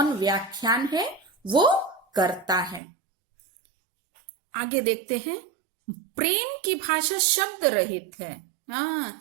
व्याख्यान है वो करता है। आगे देखते हैं, प्रेम की भाषा शब्द रहित है। हाँ,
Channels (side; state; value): left; drops out; at 2.8 s